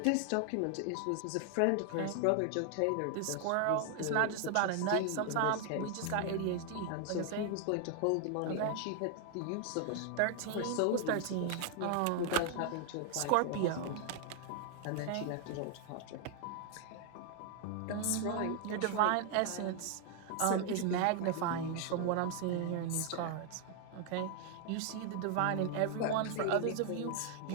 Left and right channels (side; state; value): both; different; correlation 0.00